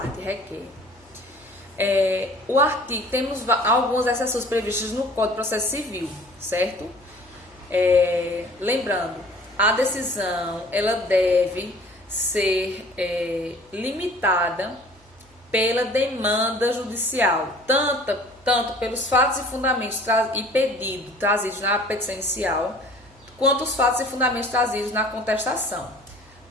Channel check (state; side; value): normal; both; correlation 0.49